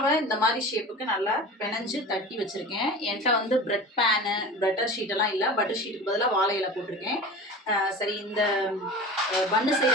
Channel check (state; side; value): normal; both; correlation 0.35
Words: இந்த மாதிரி ஷேப்புக்கு நல்லா பிணைஞ்சு தட்டி வச்சுருக்கேன். என்கிட்ட வந்து பிரெட் பேனு பட்டர் ஷீட்டெல்லாம் இல்லை. பட்டர் ஷீட்டுக்கு பதிலாக வாழை இலை போட்டிருக்கேன். சரி, இந்த பன்னு